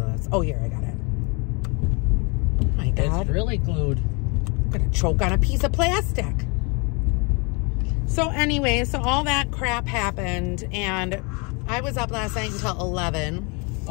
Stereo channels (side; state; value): right; quieter; 31.4 dB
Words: Oh, here, I got it. Oh my God. It's really glued. I'm gonna choke on a piece of plastic. So anyway, so all that crap happened, and I was up last night until 11.